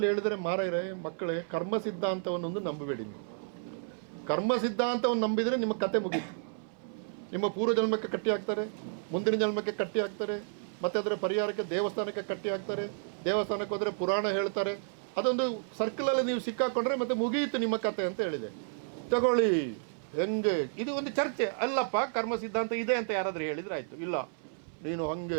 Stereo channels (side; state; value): left; silent; 57 dB below the other